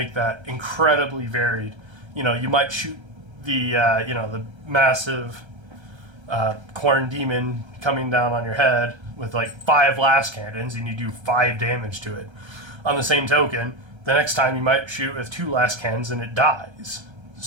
that incredibly varied. You might shoot the massive corn demon coming down on your head with 5 last cannons, and you do 5 damage to it. On the same token, the next time you might shoot with 2 last cannons and it dies.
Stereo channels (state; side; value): late; left; 1.3 ms